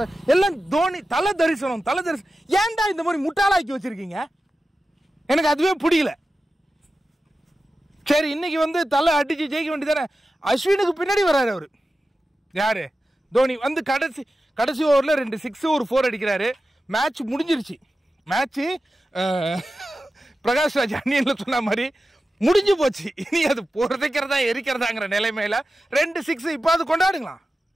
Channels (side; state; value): both; normal; correlation 0.93